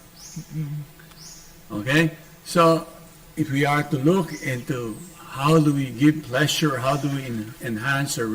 Okay? So, if we are to look into how do we give pleasure, how do we enhance our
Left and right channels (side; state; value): both; identical; correlation 1.00